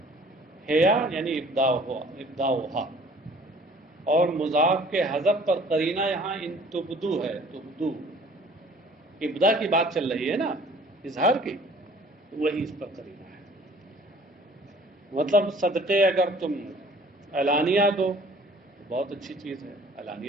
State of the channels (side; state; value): both; normal; correlation 0.52